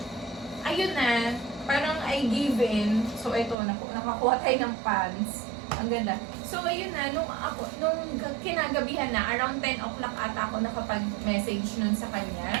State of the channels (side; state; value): left; drops out; at 3.6 s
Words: I ayun na, parang I give in. So, ito, nakakuha tayo ng pants. Ang ganda. So, ayun na, nung kinagabihan na, around 10 o'clock ata ako nakapag-message nun sa